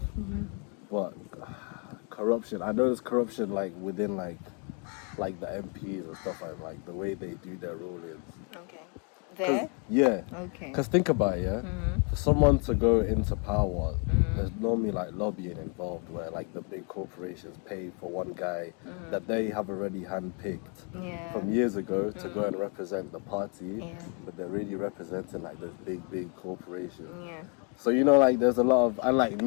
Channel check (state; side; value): quieter; right; 37.1 dB